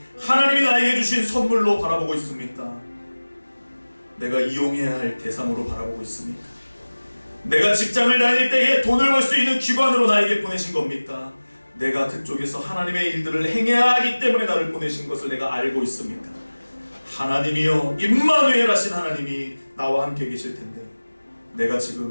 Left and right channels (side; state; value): both; inverted; correlation -1.00